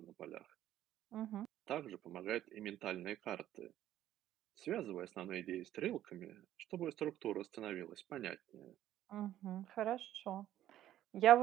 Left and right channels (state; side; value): quieter; left; 12.6 dB